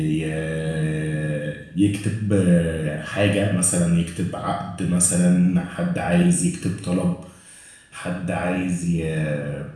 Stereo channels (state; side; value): identical; both; correlation 1.00